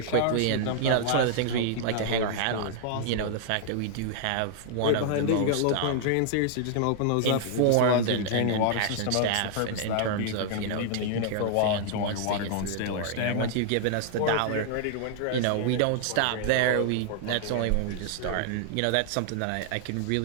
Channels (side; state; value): both; different; correlation -0.01